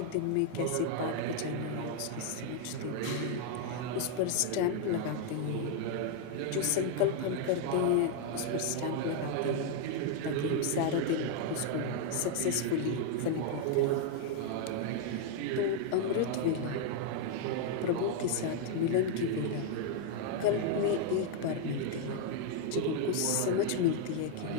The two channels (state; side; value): different; both; correlation 0.00